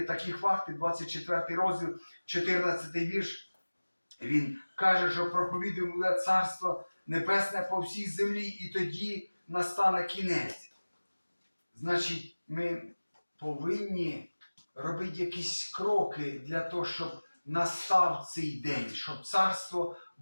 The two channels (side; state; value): both; inverted; correlation -1.00